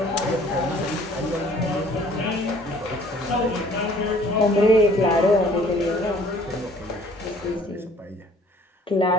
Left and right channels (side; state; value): both; normal; correlation 0.55